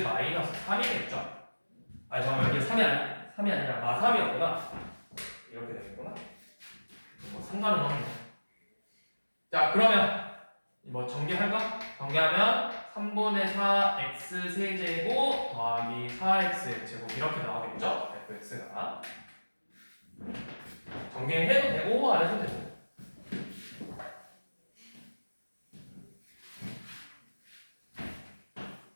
마이너스 3이겠죠? 아니 잠깐만 여기 3이 아니라 마3이었구나. 이렇게 되겠구나. 뭐 상관은 없네. 자 그러면 뭐 전개할까? 전개하면 3분의 4 x 세제곱 더하기 4x 제곱 이렇게 나오겠죠? fx가 전개해도 되고 안 해도 되고.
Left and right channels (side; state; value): both; inverted; correlation -1.00